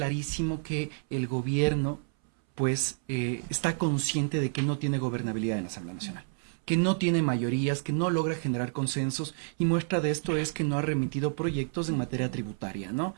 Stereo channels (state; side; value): silent; left; 58 dB below the other